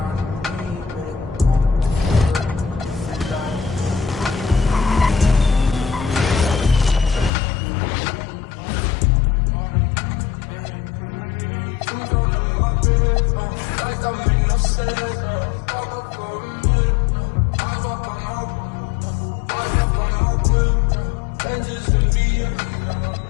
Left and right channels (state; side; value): drops out; right; at 7.3 s